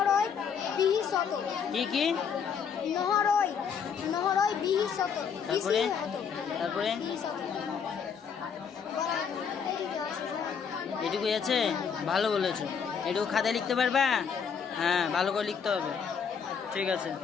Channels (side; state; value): right; quieter; 6.8 dB